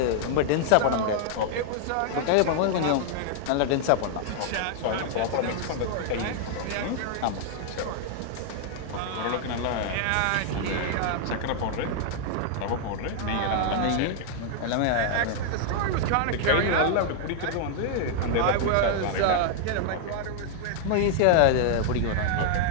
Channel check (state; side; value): different; both; correlation -0.01